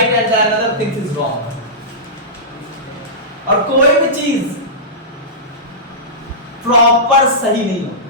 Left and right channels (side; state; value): both; normal; correlation -0.17